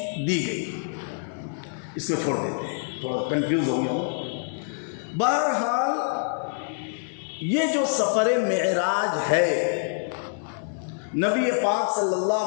دی گئی، اس کو چھوڑ دیتے ہیں، تھوڑا کنفیوز ہو گیا ہوں۔ بہرحال یہ جو سفر معراج ہے، نبی پاک صلی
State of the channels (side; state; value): right; silent; digital silence